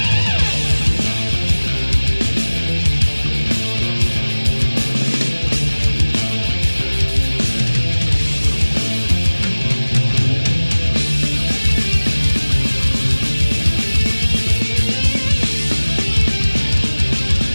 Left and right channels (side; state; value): both; inverted; correlation -1.00